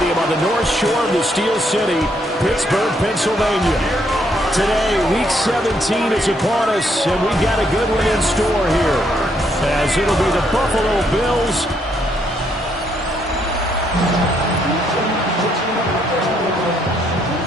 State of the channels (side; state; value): both; normal; correlation 0.72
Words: on the north shore of the Steel City, Pittsburgh, Pennsylvania. Today, Week 17 is upon us, and we've got a good one in store here, as it'll be the Buffalo Bills